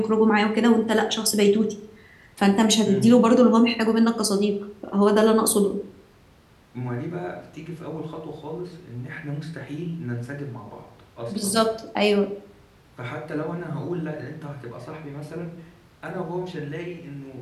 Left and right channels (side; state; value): both; identical; correlation 1.00